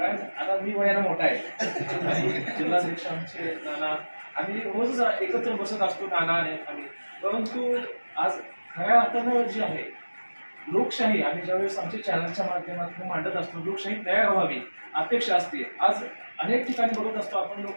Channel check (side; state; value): both; inverted; correlation -1.00